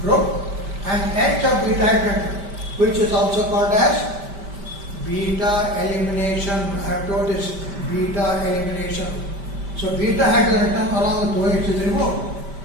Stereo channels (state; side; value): late; left; 5.1 ms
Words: group and H of beta hydrogen, which is also called as beta elimination. I have told this beta elimination. So beta hydrogen atom along with OH is removed.